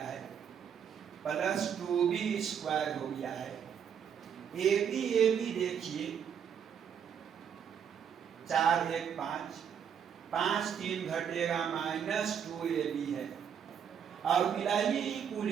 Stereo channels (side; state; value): left; quieter; 8.0 dB